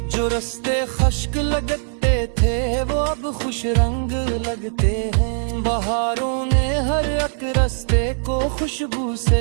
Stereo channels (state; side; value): silent; left; digital silence